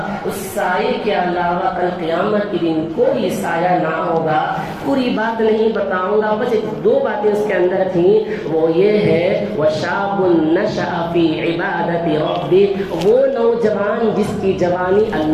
اس سائے کے علاوہ کل قیامت کے دن کوئی سایہ نہ ہوگا۔ پوری بات نہیں بتاؤں گا، بس 2 باتیں اس کے اندر تھیں، وہ یہ ہے وَشَابٌ نَشَأَ فِي عِبَادَةِ رَبِّهِ، وہ نوجوان جس کی جوانی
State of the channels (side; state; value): both; identical; correlation 1.00